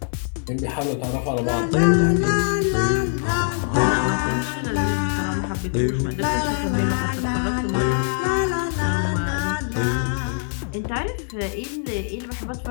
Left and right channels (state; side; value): silent; right; digital silence